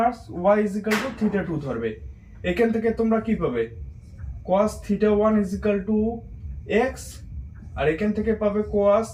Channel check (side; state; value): both; identical; correlation 1.00